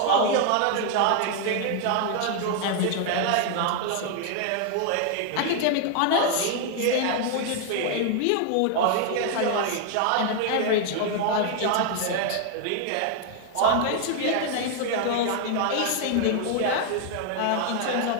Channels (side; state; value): both; different; correlation 0.00